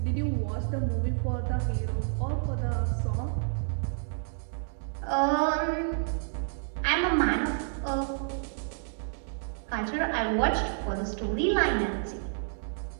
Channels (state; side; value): silent; left; 58 dB below the other